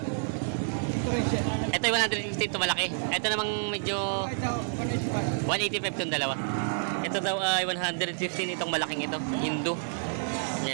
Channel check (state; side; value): silent; left; digital silence